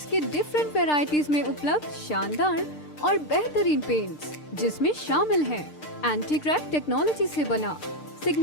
के डिफरेंट वैरायटीज में उपलब्ध शानदार और बेहतरीन पेंट्स, जिसमें शामिल है एंटी क्रैक टेक्नोलॉजी से बना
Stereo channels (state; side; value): late; right; 6.6 ms